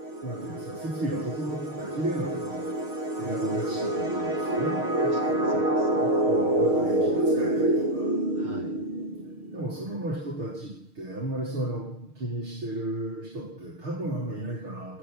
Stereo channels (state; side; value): late; left; 6.5 ms